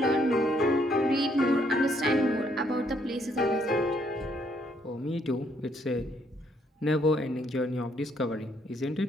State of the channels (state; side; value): normal; both; correlation 0.70